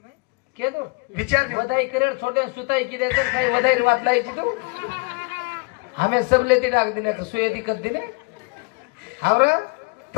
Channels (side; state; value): right; quieter; 30.1 dB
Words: के दो विचार दियो. वधाई करेड़ छोटे सुताई की देते खाई वधाई बात लाई की तू हमें सब लेती डाक दिने तो सुये दिक्कत दिने हावरा